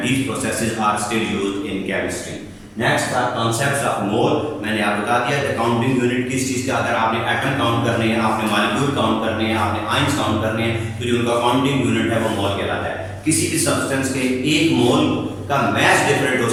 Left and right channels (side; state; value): both; identical; correlation 1.00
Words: these processes are still used in chemistry. Next था concepts of mole. मैंने आपको बता दिया कि counting unit किस चीज़ का, अगर आपने एटम काउंट करने हैं, आपने मॉलिक्यूल काउंट करने हैं, आपने आयंस काउंट करने हैं, तो जो उनका काउंटिंग यूनिट है वो मोल कहलाता है। किसी भी सब्सटेंस के 1 मोल का मैच डिफरेंट हो